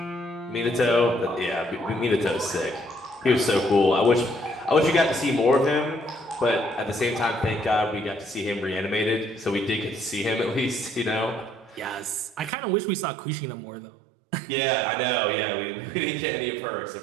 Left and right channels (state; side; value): drops out; left; at 12.5 s